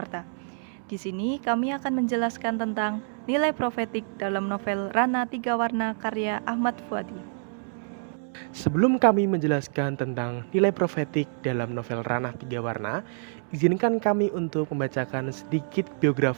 Di sini kami akan menjelaskan tentang nilai profetik dalam novel Ranah Tiga Warna karya Ahmad Fuadi. Sebelum kami menjelaskan tentang nilai profetik dalam novel Ranah Tiga Warna, izinkan kami untuk membacakan sedikit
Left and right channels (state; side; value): silent; left; 60 dB below the other